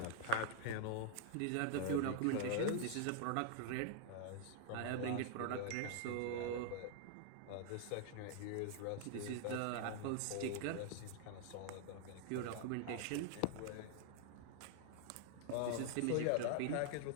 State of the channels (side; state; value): both; different; correlation 0.00